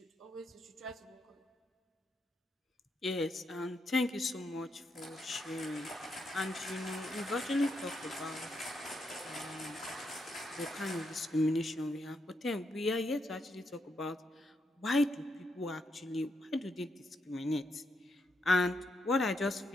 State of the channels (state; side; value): normal; both; correlation 0.80